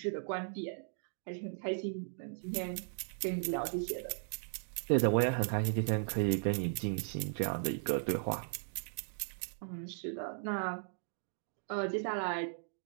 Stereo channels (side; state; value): left; silent; digital silence